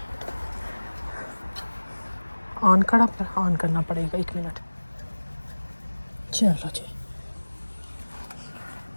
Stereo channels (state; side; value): inverted; both; correlation -1.00